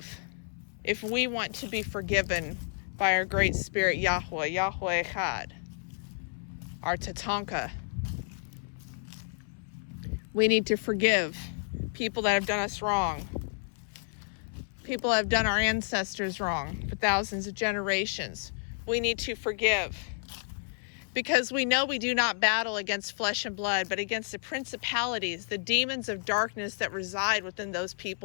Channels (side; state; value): right; silent; 57 dB below the other